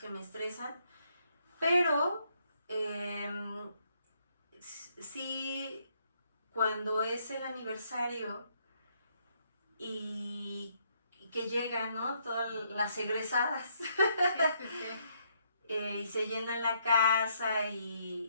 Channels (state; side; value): inverted; both; correlation -0.73